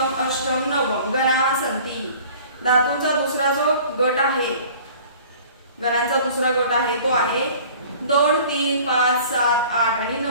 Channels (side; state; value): both; inverted; correlation -0.47